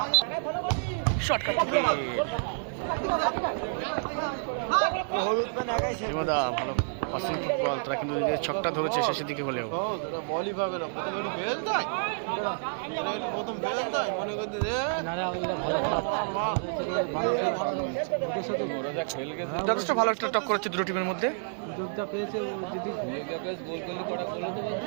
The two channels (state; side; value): silent; left; 55 dB below the other